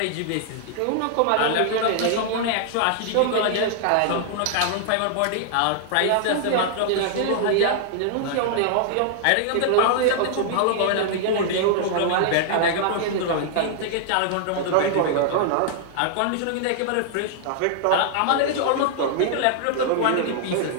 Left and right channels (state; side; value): different; both; correlation -0.01